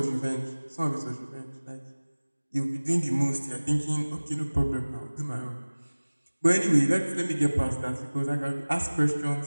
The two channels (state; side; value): inverted; both; correlation -1.00